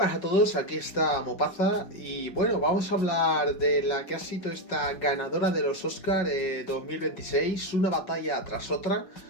a todos, aquí está Mopaza y bueno, vamos a hablar de la que ha sido esta ganadora de los Oscar 2026, una batalla tras otra.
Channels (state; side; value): late; right; 5.4 ms